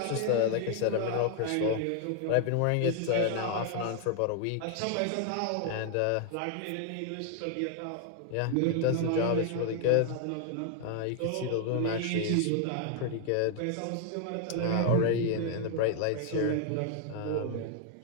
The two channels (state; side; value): different; both; correlation 0.00